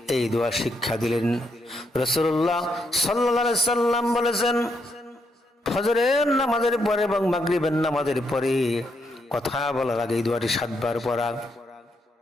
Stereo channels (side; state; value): both; normal; correlation 0.78